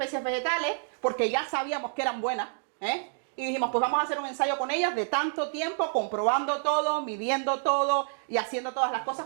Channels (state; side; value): silent; left; digital silence